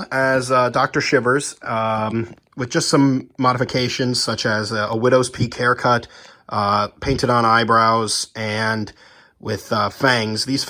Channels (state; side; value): identical; both; correlation 1.00